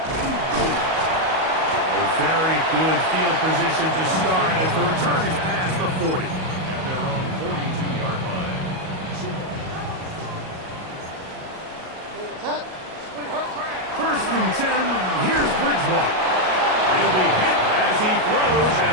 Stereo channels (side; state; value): left; late; 38 ms